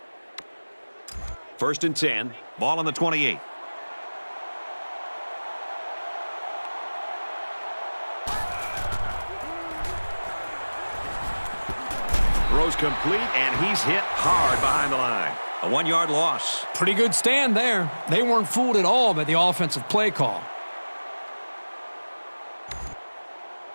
First and 10. Ball on the 28. Throws complete, and he's hit hard behind the line. A 1-yard loss. Pretty good stand there. They weren't fooled at all by the offensive play call.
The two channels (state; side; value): inverted; both; correlation -1.00